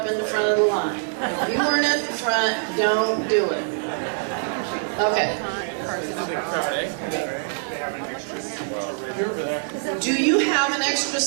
in the front of the line. If you weren't at the front, don't do it. Okay. Do you have an extra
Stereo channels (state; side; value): silent; left; 63 dB below the other